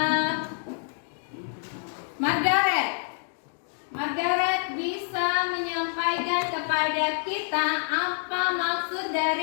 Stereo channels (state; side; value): silent; right; 60 dB below the other